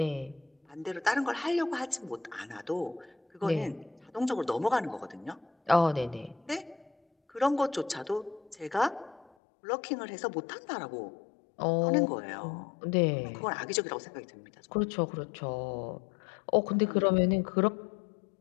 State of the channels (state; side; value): drops out; right; at 9.3 s